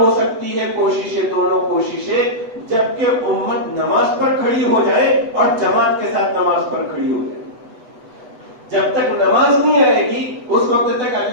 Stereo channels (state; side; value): late; left; 8.0 ms